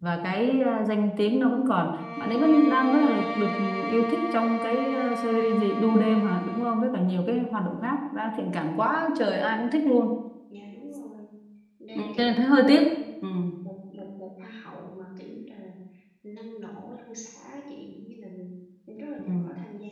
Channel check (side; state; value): both; identical; correlation 1.00